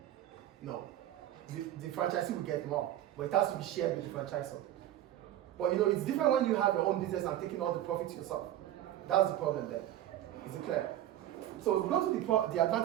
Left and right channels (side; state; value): left; quieter; 12.7 dB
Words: No. The franchisee will get more, but it has to be shared with the franchisor. But you know, it's different when you have your own business and taking all the profits yourself. That's the problem there. Is it clear? So we go to the